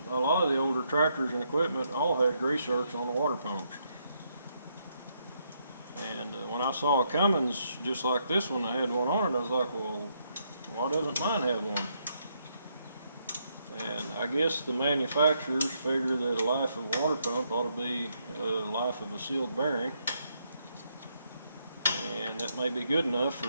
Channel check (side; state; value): both; inverted; correlation -0.76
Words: a lot of the older tractors and equipment all had grease zerks on the water pumps. And when I saw a Cummins just like this one, I had one on it, I was like, well, why doesn't mine have one? And I guess the manufacturers figure that a life of a water pump ought to be a life of a sealed bearing. And that may be good enough